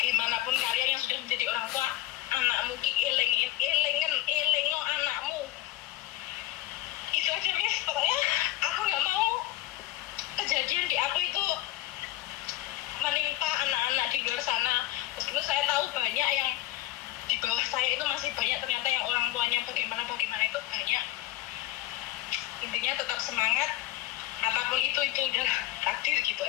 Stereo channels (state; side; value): quieter; right; 15.5 dB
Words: kalian yang sudah menjadi orang tua, anakmu elengo anakmu. Itu aja Miss, pokoknya aku nggak mau kejadian di aku itu menimpa anak-anak di luar sana. Meskipun saya tahu banyak yang di bawah saya itu masih banyak ternyata yang orang tuanya bagaimana itu banyak. Intinya tetap semangat, apapun itu udah takdir gitu